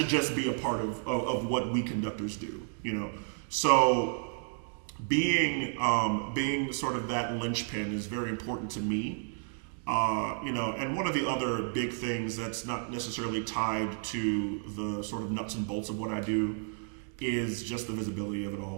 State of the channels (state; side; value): silent; left; 57 dB below the other